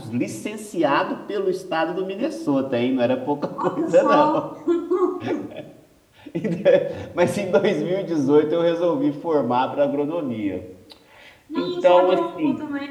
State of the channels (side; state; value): both; identical; correlation 1.00